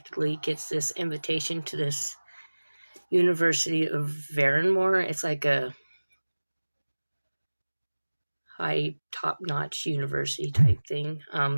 gets this invitation to this University of Varenmore. It's like a high, top-notch university type thing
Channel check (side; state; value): both; inverted; correlation -1.00